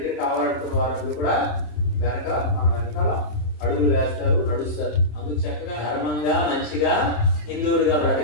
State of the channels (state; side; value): late; right; 27 ms